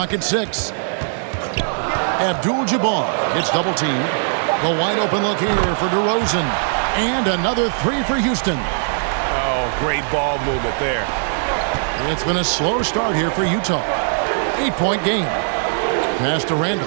at 6. Abdul-Jabbar gets double teamed. The wide open look here for DeRozan. And another three for Houston. Oh, great ball movement there. It's been a slow start here for Utah. 8-point game. Pass to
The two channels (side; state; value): left; silent; digital silence